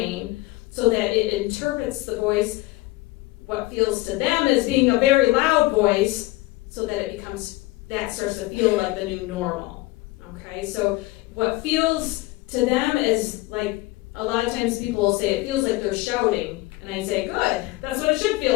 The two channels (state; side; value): quieter; right; 19.8 dB